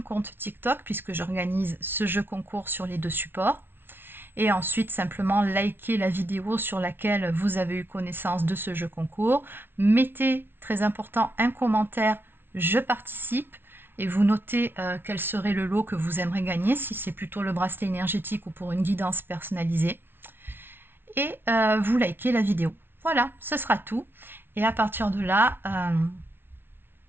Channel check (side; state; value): left; late; 0.11 ms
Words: compte TikTok puisque j'organise ce jeu concours sur les deux supports, et ensuite simplement liker la vidéo sur laquelle vous avez eu connaissance de ce jeu concours. Mettez, très important, un commentaire « Je participe » et vous notez quel serait le lot que vous aimeriez gagner, si c'est plutôt le bracelet énergétique ou pour une guidance personnalisée. Et vous likez la vidéo. Voilà, ce sera tout. Et à partir de là,